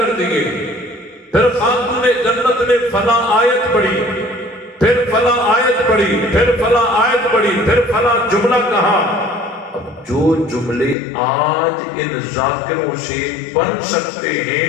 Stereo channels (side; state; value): right; drops out; at 11.0 s